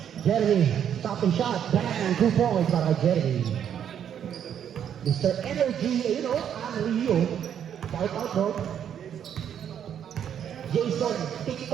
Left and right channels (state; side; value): quieter; left; 9.1 dB